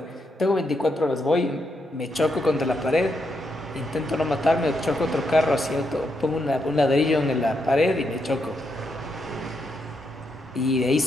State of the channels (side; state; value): both; normal; correlation 0.80